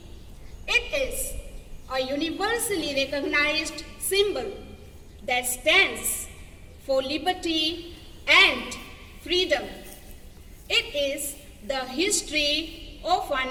It is a universally recognized symbol that stands for liberty and freedom. It is the history of our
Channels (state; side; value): identical; both; correlation 1.00